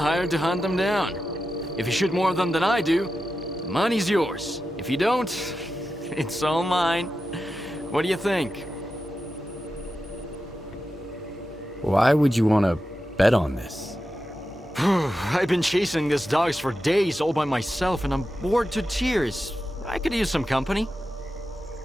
to hunt them down. If you shoot more of them than I do, the money's yours. If you don't, it's all mine. What do you think? Why would you want to bet on this? I've been chasing these dogs for days all by myself, and I'm bored to tears. I could use some company.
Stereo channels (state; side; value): normal; both; correlation 0.91